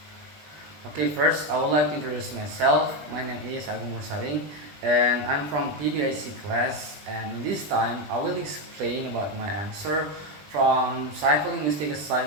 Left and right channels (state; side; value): late; left; 20 ms